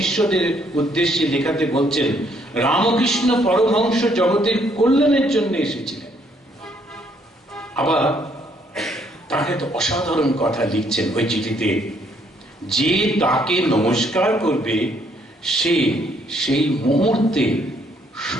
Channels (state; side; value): normal; both; correlation 0.68